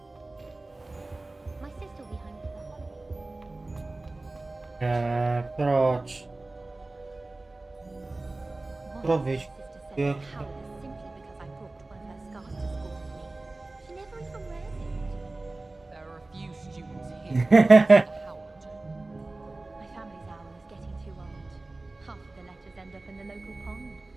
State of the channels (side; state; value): left; quieter; 3.0 dB